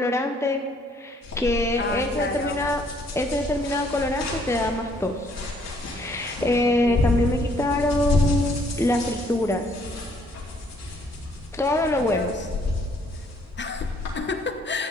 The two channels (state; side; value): normal; both; correlation 0.65